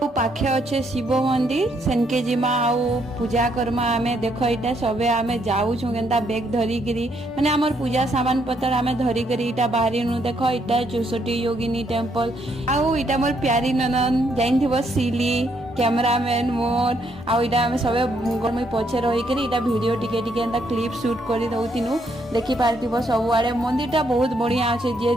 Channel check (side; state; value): both; normal; correlation 0.73